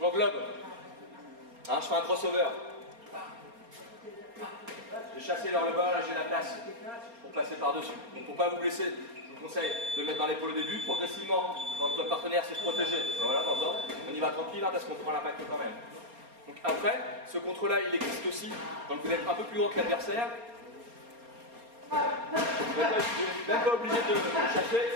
Hein, je fais un crossover. J'ai chassé vers le bas, là j'ai la place pour passer par-dessus. Donc pour ne pas vous blesser, je vous conseille de le mettre dans l'épaule au début. Progressivement, quand votre partenaire s'est protégé, voilà, on y va tranquille hein, parce qu'on prend l'impact quand même. Donc après, ce contrôle-là, il existe aussi quand vous êtes un peu plus haut que l'adversaire. Vous n'êtes même pas obligé de le chasser.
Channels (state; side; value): late; left; 4.3 ms